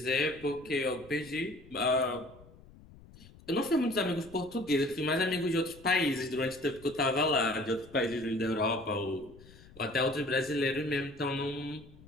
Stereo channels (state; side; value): noise; left; rumble, 22 dB below the sound